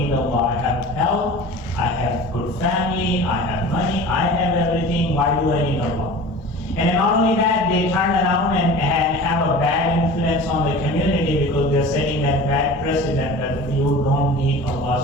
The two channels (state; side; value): normal; both; correlation 0.38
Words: Allah, I have health, I have good family, I have money, I have everything, why do I need Allah? And then not only that, they turn around and have a bad influence on the community because they're setting that bad precedent that you don't need